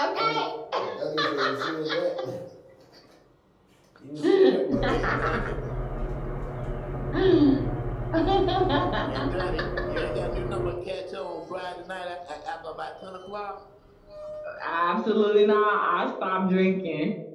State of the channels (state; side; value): identical; both; correlation 1.00